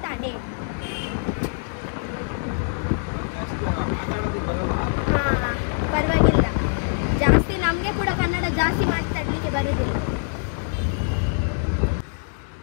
ಅಂಡೆ ಹಾಂ ಪರವಾಗಿಲ್ಲ ಜಾಸ್ತಿ ನಮಗೆ ಕೂಡ ಕನ್ನಡ ಜಾಸ್ತಿ ಮಾತಾಡಲಿಕ್ಕೆ ಬರುವುದಿಲ್ಲ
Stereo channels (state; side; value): silent; right; digital silence